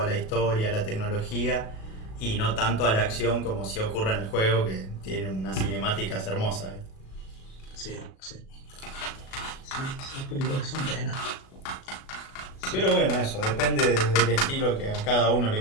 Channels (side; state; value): right; late; 37 ms